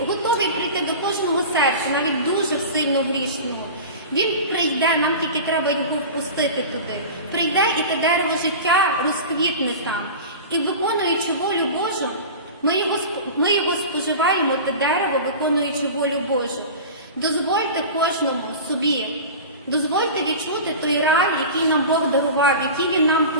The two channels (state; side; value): inverted; both; correlation -0.32